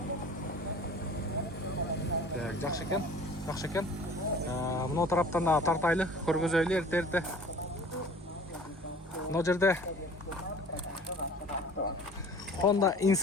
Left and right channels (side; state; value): both; normal; correlation 0.46